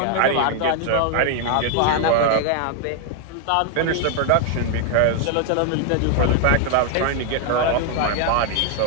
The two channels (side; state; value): both; different; correlation 0.00